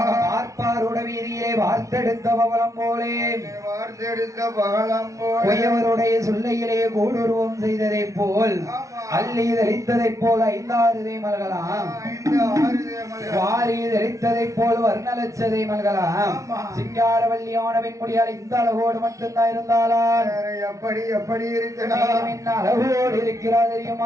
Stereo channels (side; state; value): left; late; 0.15 ms